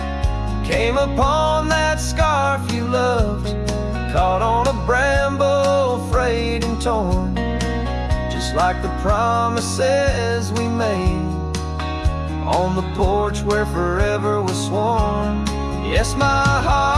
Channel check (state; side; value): identical; both; correlation 1.00